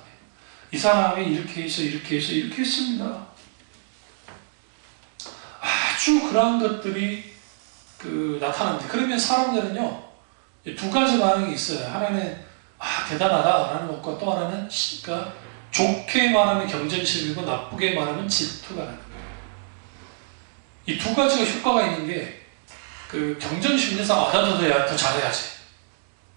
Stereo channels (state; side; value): silent; left; digital silence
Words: 이 사람이 이렇게 해서 이렇게 해서 이렇게 했습니다. 아주 그러한 것들이 나타납니다. 그러면 사람들은요, 두 가지 반응이 있어요. 하나는 대단하다라는 것과 또 하나는 그러니까 좋게 말하면 경쟁심이고 나쁘게 말하면 질투가 나는 거예요. 이 두 가지가 효과가 있는 게 그 경쟁심에서 나도 더 잘해야지.